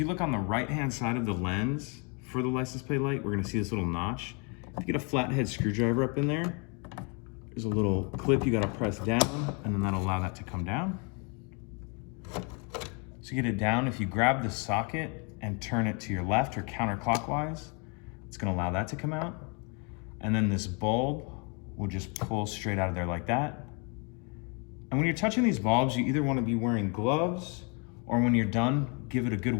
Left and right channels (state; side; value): quieter; right; 34.3 dB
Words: look on the right-hand side of the lens for the license plate light, we're going to see this little notch. If you get a flathead screwdriver up in there, there's a little clip you got to press down, and then that'll allow that to come down. To get it down, if you grab the socket and turn it to your left or counterclockwise, it's going to allow that to come out. And then this bulb will just pull straight out of there like that. And when you're touching these bulbs, you either want to be wearing gloves, or when you're done, give it a good